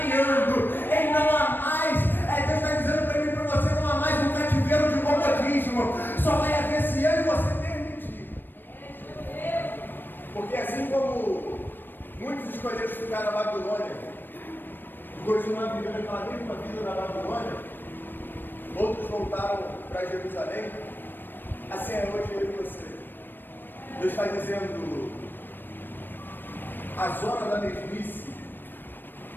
Ei, não há mais. Deus está dizendo para mim e para você, não há mais um cativeiro de comodismo. Só vai haver se eu e você permitir. Porque assim como muitos escolheram ficar na Babilônia, continuar vivendo aquela mesma vida na Babilônia, outros voltaram para Jerusalém. Assim é hoje eu e você. Deus está dizendo, a zona da mesmice,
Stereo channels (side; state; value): right; late; 0.094 ms